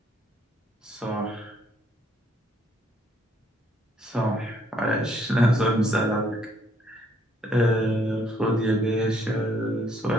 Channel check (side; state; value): both; normal; correlation 0.67